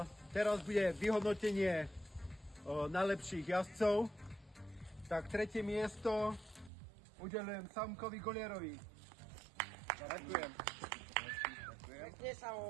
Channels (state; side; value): drops out; left; at 6.7 s